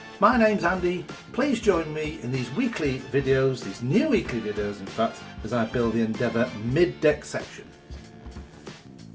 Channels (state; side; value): identical; both; correlation 1.00